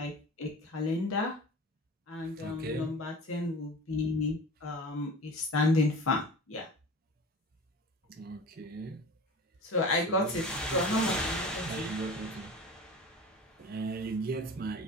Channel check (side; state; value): both; normal; correlation 0.37